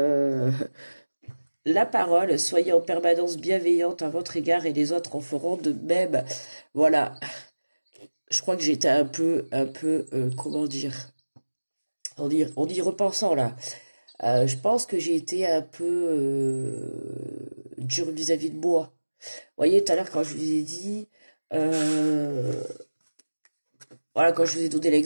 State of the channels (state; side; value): inverted; both; correlation -1.00